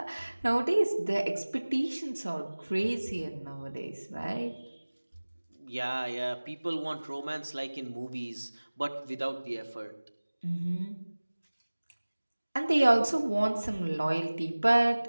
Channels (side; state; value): both; inverted; correlation -1.00